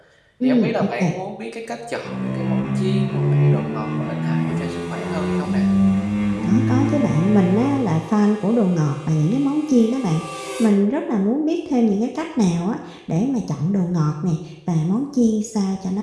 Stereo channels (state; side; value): identical; both; correlation 1.00